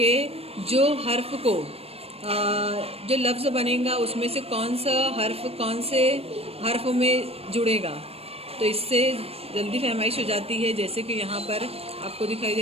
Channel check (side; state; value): left; late; 0.29 ms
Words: जो हर्फ को जो लफ्ज़ बनेगा उसमें से कौन सा हर्फ कौन से हर्फ में जुड़ेगा, तो इससे जल्दी फहमाइश हो जाती है। जैसे कि यहाँ पर आपको दिखाई